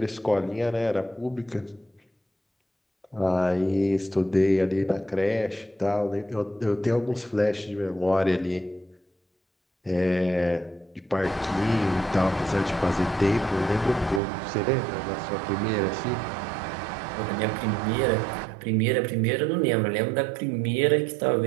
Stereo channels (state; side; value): drops out; left; at 14.2 s